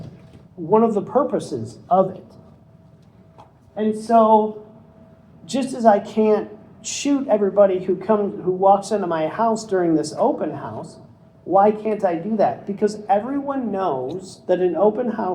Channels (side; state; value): both; identical; correlation 1.00